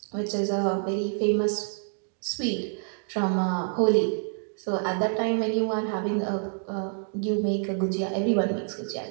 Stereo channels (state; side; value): silent; left; 59 dB below the other